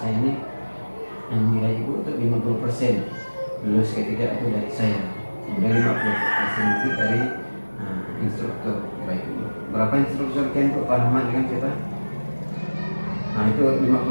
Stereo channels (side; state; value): both; inverted; correlation -1.00